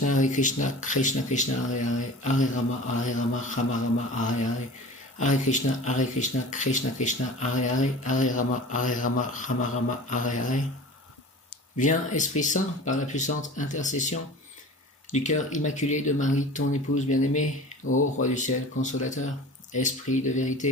Krishna Krishna, Hare Hare, Hare Rama, Rama, Hare Hare. Hare Krishna, Krishna Krishna, Hare Hare, Hare Rama, Rama, Hare Hare. Viens, Esprit Saint, par la puissante intercession du cœur immaculé de Marie, ton épouse bien-aimée, ô Roi du ciel, consolateur, Esprit de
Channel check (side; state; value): both; normal; correlation 0.38